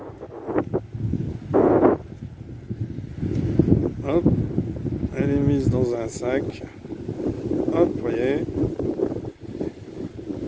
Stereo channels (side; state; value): both; identical; correlation 1.00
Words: Hop, elle est mise dans un sac. Hop, vous voyez.